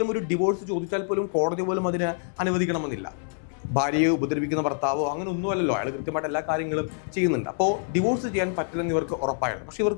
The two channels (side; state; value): right; silent; 61 dB below the other